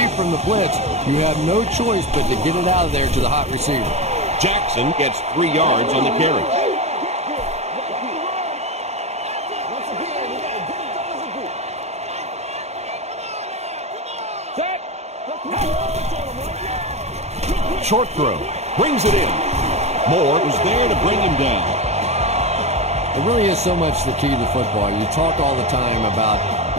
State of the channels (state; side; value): late; left; 0.31 ms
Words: from the blitz, you have no choice but to get it out of there to the hot receiver. Jackson gets 3 yards on the carry. Short throw. Brings it in. Moore was there to bring him down. It really is so much the key to football. You talk all the time about